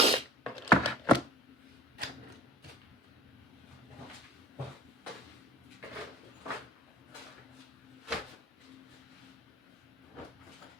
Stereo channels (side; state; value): both; normal; correlation 0.45